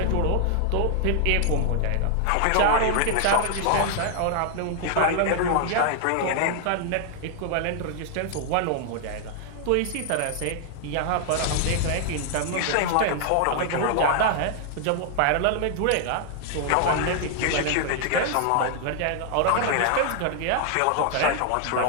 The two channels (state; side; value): different; both; correlation 0.00